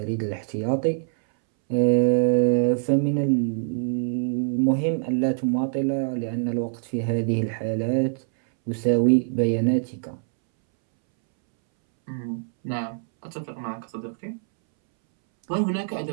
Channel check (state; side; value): silent; left; 62 dB below the other